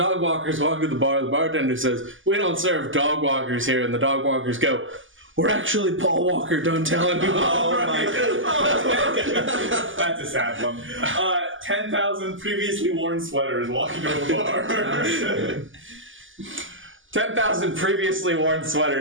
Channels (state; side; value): late; left; 0.57 ms